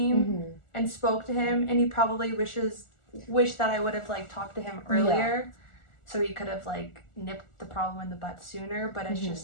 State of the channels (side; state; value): right; late; 1.4 ms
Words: and spoke to him, and he probably wish that I would have like talked to him earlier, so he could have like nipped the problem in the butt sooner. But it's